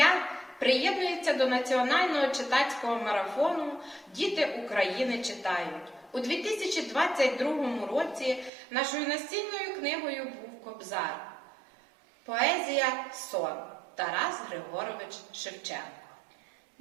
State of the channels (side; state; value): left; drops out; at 8.5 s